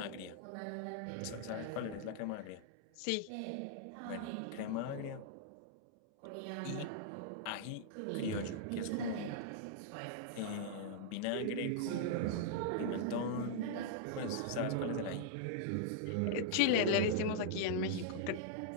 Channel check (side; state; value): both; different; correlation -0.01